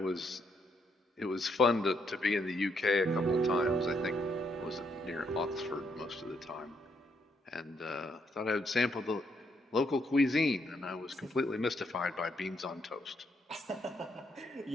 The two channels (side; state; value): both; normal; correlation 0.75